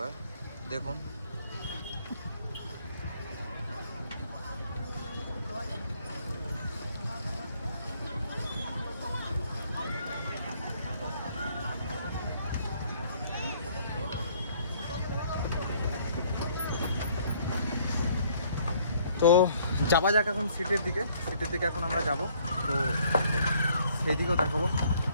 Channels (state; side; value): inverted; both; correlation -0.62